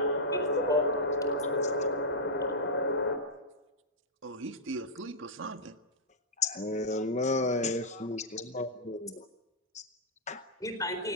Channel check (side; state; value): both; normal; correlation -0.10